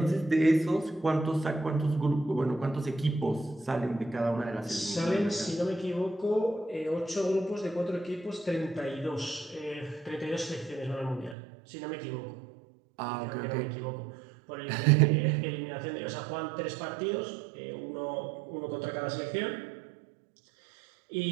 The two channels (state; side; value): drops out; left; at 11.4 s